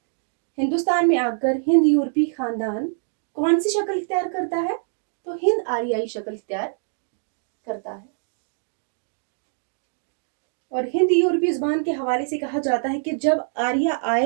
हिंदुस्तान में आकर हिंद यूरोपी खानदान कौन सी शक्ल इख्तियार करता है? तो हिंद आर्याई शक्ल इख्तियार करता है। और हिंद यूरोपी जुबान के हवाले से कहा जाता है कि जब आर्य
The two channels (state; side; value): silent; left; digital silence